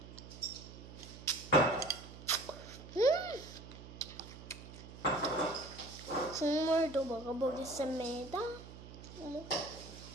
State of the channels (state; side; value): noise; right; hum, 14 dB below the sound